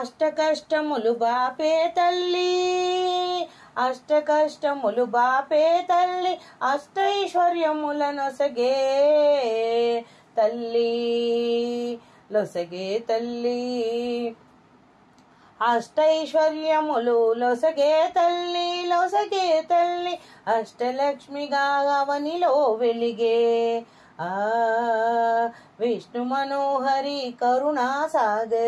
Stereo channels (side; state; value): both; identical; correlation 1.00